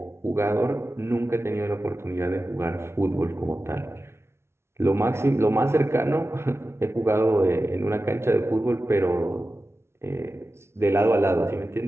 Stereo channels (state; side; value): late; left; 0.12 ms